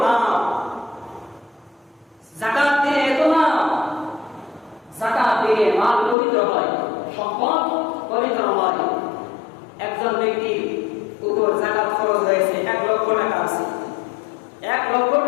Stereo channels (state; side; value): drops out; right; at 6.2 s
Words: লাভ, যাকাত দিলে এত লাভ। যাকাত দিলে মাল পবিত্র হয়, সম্পদ পবিত্র হয়। একজন ব্যক্তির উপর যাকাত খরচ হয়েছে 1 লক্ষ টাকা আছে, 1 লক্ষ